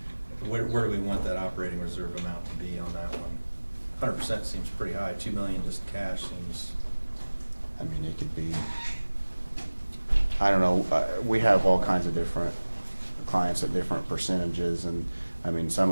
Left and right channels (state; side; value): inverted; both; correlation -1.00